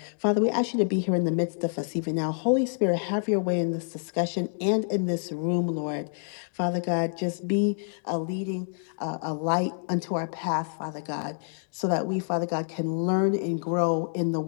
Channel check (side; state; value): right; silent; digital silence